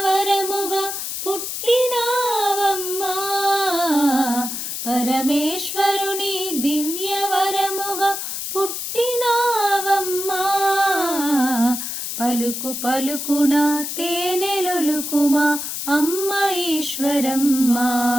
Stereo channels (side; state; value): left; noise; hiss, 5 dB below the sound